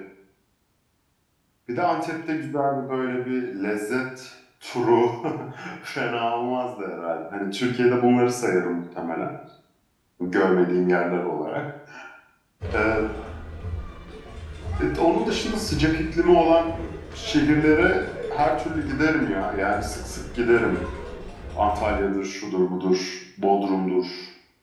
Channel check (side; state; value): both; identical; correlation 1.00